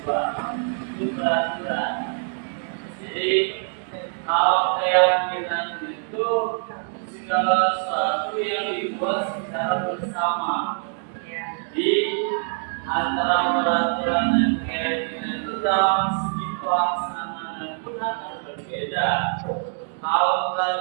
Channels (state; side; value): silent; left; 58 dB below the other